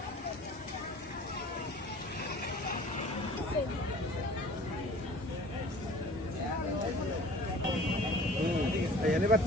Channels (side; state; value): both; normal; correlation 0.46